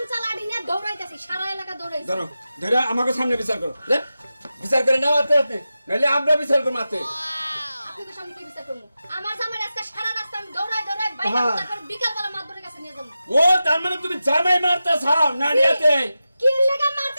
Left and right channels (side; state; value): both; inverted; correlation -0.92